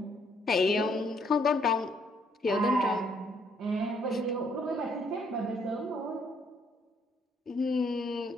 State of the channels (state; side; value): normal; both; correlation 0.68